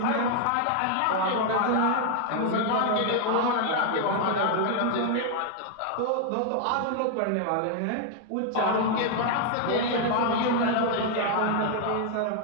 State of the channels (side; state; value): both; different; correlation 0.00